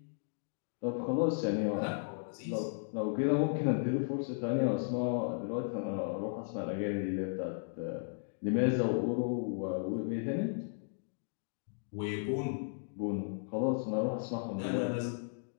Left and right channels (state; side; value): silent; right; digital silence